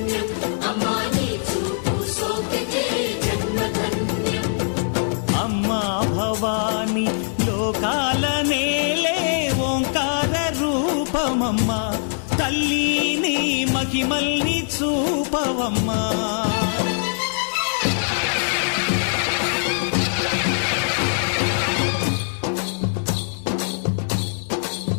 అమ్మా భవాని లోకాల నేలే ఓంకార రూపమమ్మా, తల్లిని మహిమల్ని చూపవమ్మా.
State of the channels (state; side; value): silent; right; digital silence